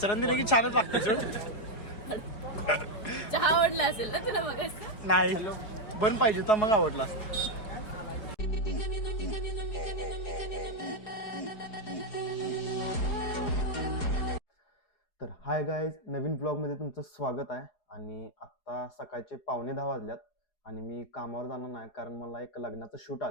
दिले की छानच लागते चहा आवडला असेल ना तुला मग नाही बन पाहिजे तर मग आवडला तर हाय गाईज नवीन ब्लॉगमध्ये तुमचं स्वागत आहे. आणि आत्ता सकाळचे 9:15 वाजल्यात आणि मी कामावर जाणार नाही कारण मला एक लग्नाचं शूट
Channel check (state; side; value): late; right; 5.0 ms